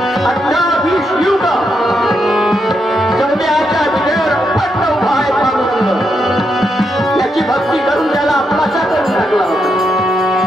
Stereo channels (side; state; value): both; normal; correlation 0.81